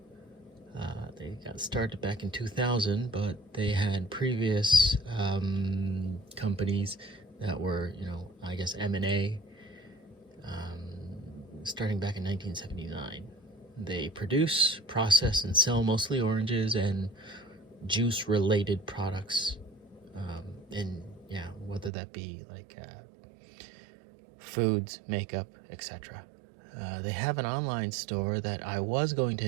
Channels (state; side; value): drops out; left; at 21.9 s